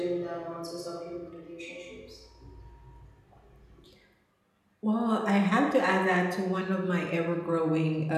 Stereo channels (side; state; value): both; identical; correlation 1.00